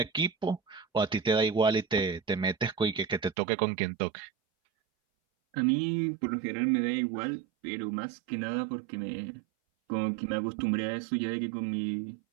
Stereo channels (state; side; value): drops out; left; at 3.4 s